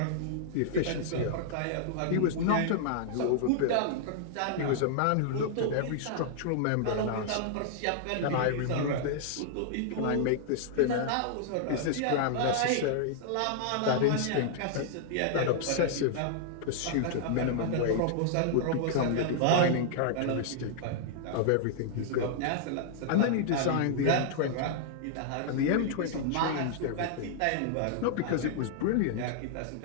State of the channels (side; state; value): both; different; correlation -0.01